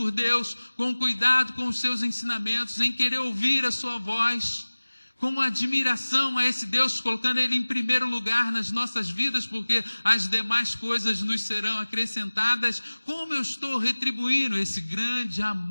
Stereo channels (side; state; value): both; inverted; correlation -1.00